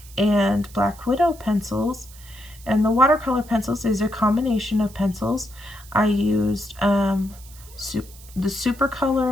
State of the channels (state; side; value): noise; right; hiss, 21 dB below the sound